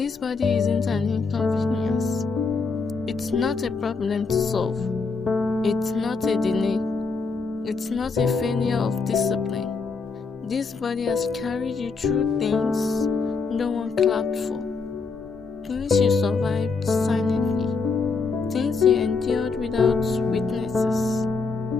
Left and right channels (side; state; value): right; quieter; 4.6 dB